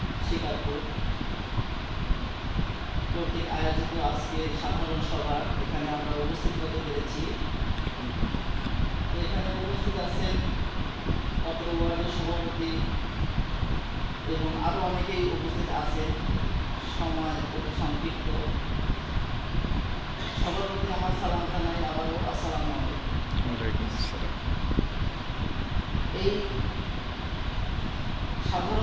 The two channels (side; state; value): both; identical; correlation 1.00